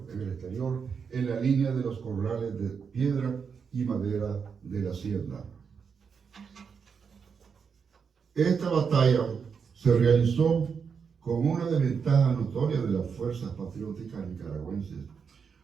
en la línea de los corrales de piedra y madera de la hacienda. Esta batalla se realizó con una desventaja notoria de las fuerzas patrióticas nicaragüenses.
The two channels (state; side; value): quieter; left; 6.2 dB